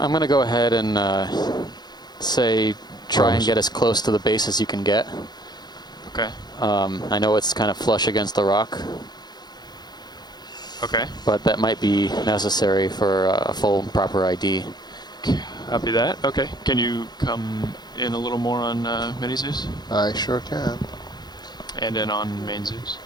going to go ahead and say try and get as close to the base as you can get. Okay. I know it's kind of flush against the rock. Okay. But that might be necessary for a full proper ID. Copy that. Okay. Can you come in a little more on mini Zeus? I sure can. And then on main Zeus?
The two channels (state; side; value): late; right; 0.20 ms